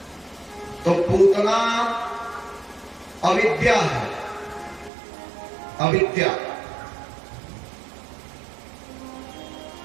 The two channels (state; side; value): drops out; left; at 4.9 s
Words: तो पूतना अविद्या है। अविद्या